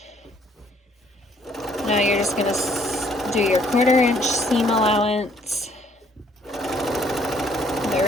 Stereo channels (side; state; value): both; normal; correlation 0.64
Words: Now you're just gonna do your 1/4 inch seam allowance the